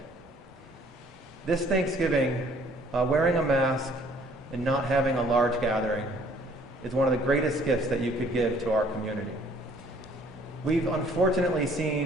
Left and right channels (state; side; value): normal; both; correlation 0.59